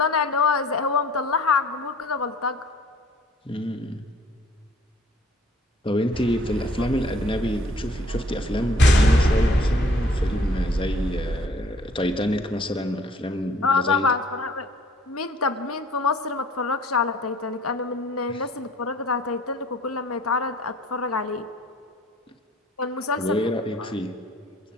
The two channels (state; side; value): normal; both; correlation 0.56